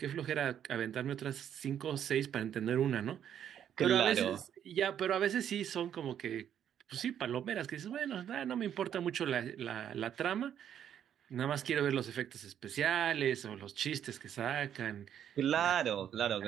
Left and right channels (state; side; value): quieter; left; 9.6 dB